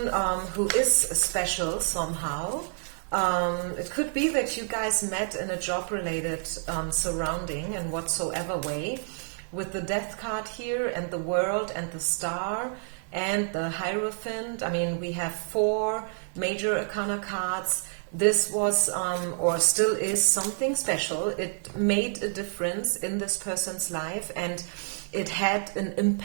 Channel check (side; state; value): left; silent; 59 dB below the other